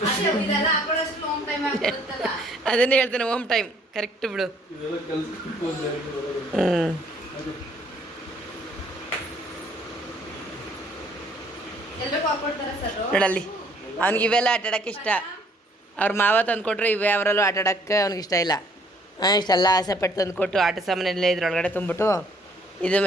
ಅದನ್ನೇ ಹೇಳ್ತೇನೆ, ಹೋಮ್ ಟೈಮ್ ಕರೆಕ್ಟ್ ಬಿಡು. ನೋಡಲ್ಲಿ ಅವ್ನಿಗೆ ಇವೆಲ್ಲ ಆಟ ಆಡೋಕ್ಕೆ ಇಷ್ಟ. ಅವ್ರ ಮಾವ ತಂದು ಕೊಟ್ಟರು ಇವೆ ಅವರಲ್ಲೂ ಆಟ ಆಡೋಕ್ಕೆ ಅವ್ನಿಗೆ ಇಷ್ಟ ಇಲ್ಲ. ಇಷ್ಟೆಲ್ಲ ಆಸೆ ಪಟ್ಟು ತಂದು ಕೊಟ್ಟು ಆಟ ಸಾಮಾನೆಲ್ಲ ಇದ್ರೊಳಗಡೆ ತುಂಬಿಟ್ಟು ಇದು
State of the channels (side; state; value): both; normal; correlation 0.62